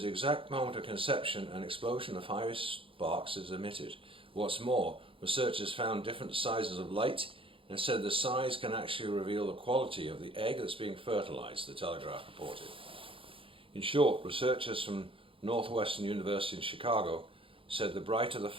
the exact moment of conception an explosion of fiery sparks is emitted. What's more, researchers found different sizes of light and said the size can actually reveal the quality of the egg that's being fertilized, the Telegraph reported. In short, researchers from Northwestern University in Chicago said the brighter the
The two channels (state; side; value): late; left; 0.26 ms